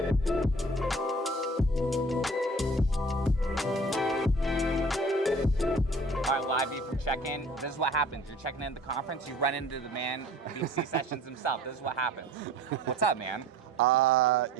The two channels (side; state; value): both; normal; correlation 0.47